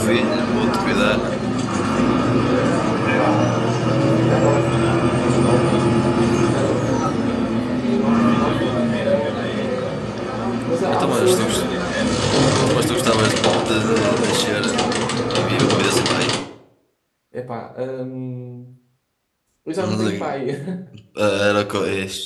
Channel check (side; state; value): both; identical; correlation 1.00